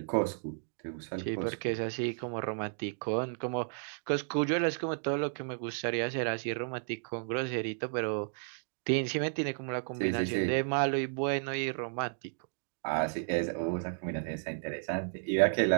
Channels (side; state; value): left; silent; digital silence